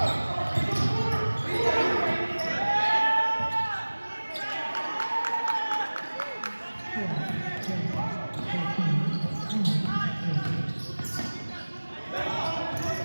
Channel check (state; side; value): inverted; both; correlation -1.00